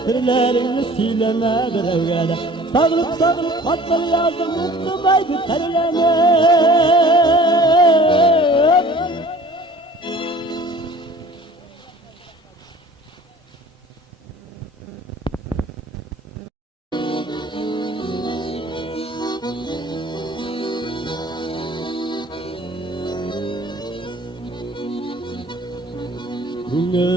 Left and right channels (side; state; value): both; normal; correlation 0.48